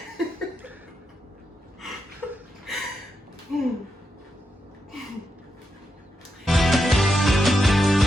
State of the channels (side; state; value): both; normal; correlation 0.85